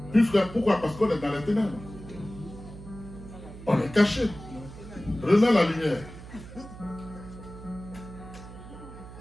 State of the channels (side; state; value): right; noise; hum, 15 dB below the sound